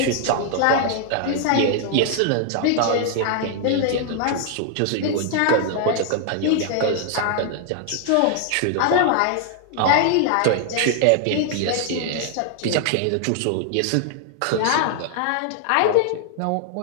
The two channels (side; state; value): both; different; correlation 0.00